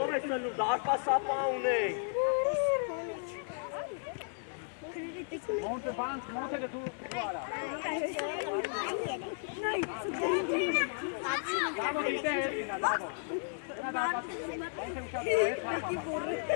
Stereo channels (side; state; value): right; silent; 55 dB below the other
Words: ես նլում, դարկա սապա ունենք։ Մոնտե բանց, մոտ է դու արա։ Դավո դիտե է, դավո։